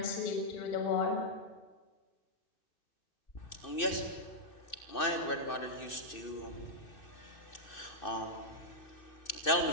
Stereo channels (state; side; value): late; right; 2.6 ms